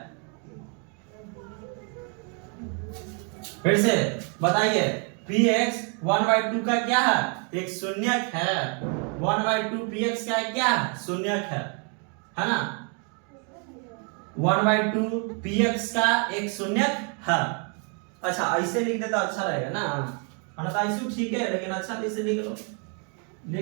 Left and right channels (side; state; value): left; quieter; 38.2 dB